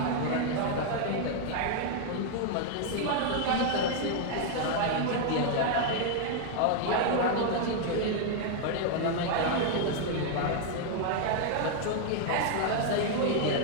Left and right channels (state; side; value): different; both; correlation 0.00